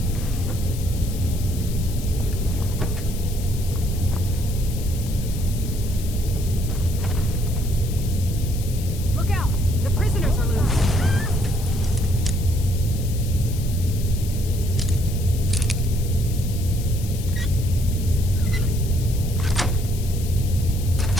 Look out! The prisoners are loose.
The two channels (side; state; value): left; noise; hiss, 14 dB below the sound